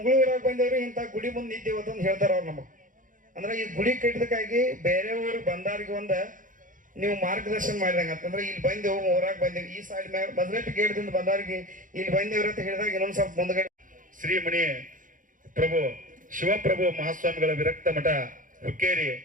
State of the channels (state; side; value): late; left; 0.39 ms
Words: ಬಂದೇವ್ರಿ, ಇಂಥ ಗುಡಿ ಮುಂದೆ ನಿಂತೇವತ್ತ ಅಂತ ಹೇಳ್ತಾರ ಅವ್ರು ನಮಗೆ. ಅಂದ್ರೆ ಈ ಗುಡಿ ಕಟ್ಟಿದಕ್ಕಾಗಿ ಬೇರೆ ಊರಿಗೆ ಬಂದಾರಿಗೆ ನೀವು ಮಾರ್ಗದರ್ಶನ ಮಾಡಿದಂಗ ಅಂತಂದ್ರೆ, ಇಲ್ಲಿ ಬಂದೇವು ಊರಾಗ ಬಂದೇವು, ಈ ಸೈಡ್ ಮ್ಯಾಗ ಬದಲೆಟ್ ಗೇಟ್ದಿಂದ ಬಂದವ್ರಿಗೆ ಇಲ್ಲಿ ಬಂದೇವ್ರ ಅಂತ ಹೇಳಿದಾಗ ಇನ್ನೊಂದ್ ಸ್ವಲ್ಪ ಮುಂದ್ಗಡೆ ಶ್ರೀಮಣಿ ಪ್ರಭು ಶಿವಪ್ರಭು ಮಹಾಸ್ವಾಮಿಗಳ ವಿರಕ್ತ ಮಠ ಹುಕ್ಕೇರಿ